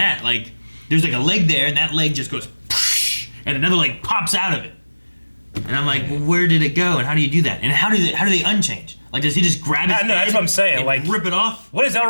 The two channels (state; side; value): inverted; both; correlation -1.00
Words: Like there's like a leg there, and that leg just goes, and another leg pops out of it. And I'm like, well, where did it go? And how do you do that? And how do they unchange? Like, does he just grab his No, that's head what I'm saying, and like- rip it off? What does